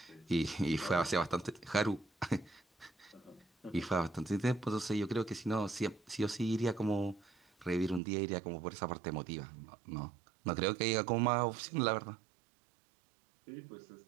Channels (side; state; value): left; drops out; at 8.0 s